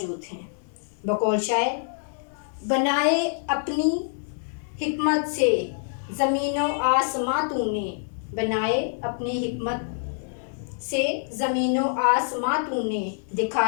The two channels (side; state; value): right; silent; digital silence